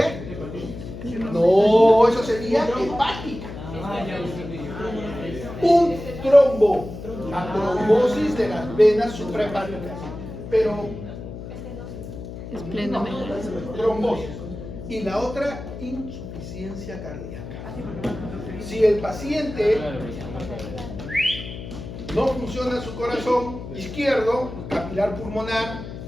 No, eso sería hepática. Un trombo, la trombosis de las venas suprahepáticas. Pero trombosis. Y la otra, insuficiencia cardíaca. Si el paciente no funciona su corazón izquierdo, capilar pulmonar,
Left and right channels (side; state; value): left; noise; hum, 10 dB below the sound